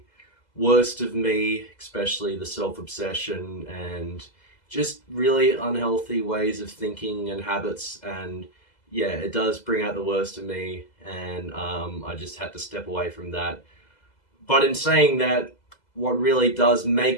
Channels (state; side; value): late; right; 2.0 ms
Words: worst of me, especially the self-obsession and just really unhealthy ways of thinking and habits. And yeah, it does bring out the worst of me, and I just had to step away from that. But in saying that, what really does